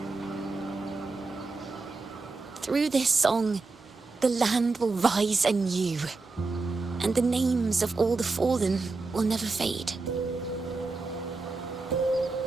Through this song, the land will rise anew, and the names of all the fallen will never fade.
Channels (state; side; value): quieter; left; 3.8 dB